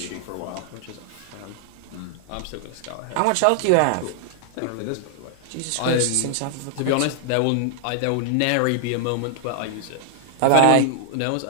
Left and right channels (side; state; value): both; different; correlation 0.00